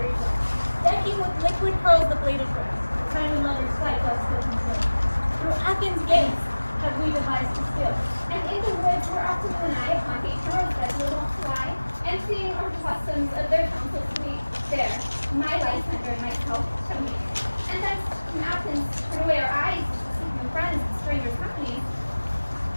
ground, decking with liquid pearls the bladed grass, time and lovers fight doth still conceal. Through Athens' gates have we devised to steal. And in the woods where often you and I upon each rose bed will wont to lie, and seeing our customs of their counsels sweet, there, my Lysander and myself shall meet. And thence from Athens turn away our eyes to seek new friends and strangers' companies.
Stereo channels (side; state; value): both; inverted; correlation -1.00